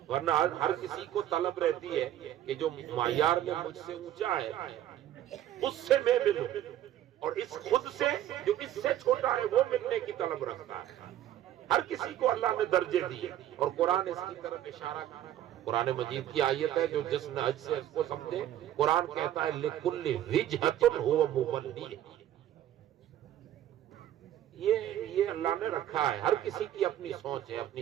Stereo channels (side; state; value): left; quieter; 12.0 dB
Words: ورنہ ہر کسی کو طلب رہتی ہے کہ جو معیار میں مجھ سے اونچا ہے اس سے میں ملوں، اور اس خود سے جو اس سے چھوٹا ہے وہ ملنے کی طلب رکھتا ہے۔ ہر کسی کو اللہ نے درجے دیے، اور قرآن اس کی طرف اشارہ کرتا ہے۔ قرآن مجید کی آیت ہے جو جس نے حج سے اس کو سمجھے، قرآن کہتا ہے لِكُلِّ وِجْهَةٌ هُوَ مُوَلِّيهَا، یہ اللہ نے رکھا ہے، ہر کسی کی اپنی سوچ ہے، اپنی